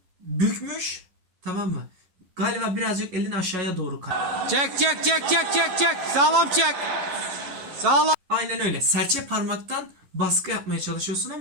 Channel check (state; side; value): late; left; 11 ms